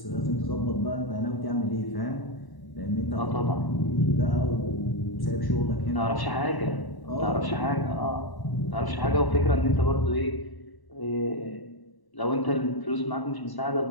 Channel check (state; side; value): late; right; 1.0 ms